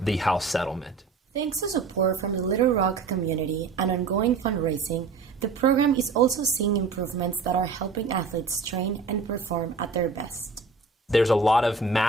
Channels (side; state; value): left; quieter; 4.5 dB